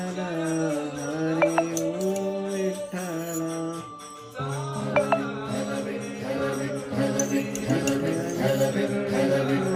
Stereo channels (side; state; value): both; identical; correlation 1.00